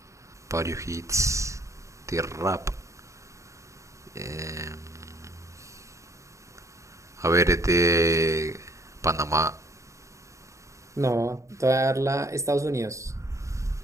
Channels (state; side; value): late; left; 0.15 ms